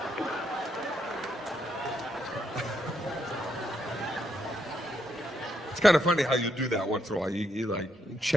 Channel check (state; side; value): normal; both; correlation 0.78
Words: It's kind of funny how you do that once in a while. You like